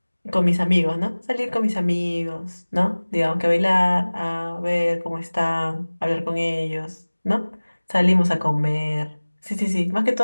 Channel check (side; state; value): both; inverted; correlation -1.00